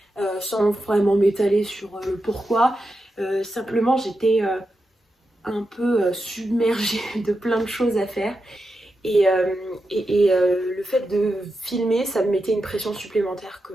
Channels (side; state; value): both; normal; correlation 0.88